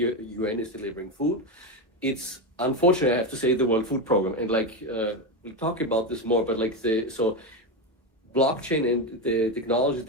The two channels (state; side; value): normal; both; correlation 0.13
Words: UN is delivering food, it's unfortunately, I have to say, the World Food Program. And like we'll talk about this more, but like so blockchain and the technologies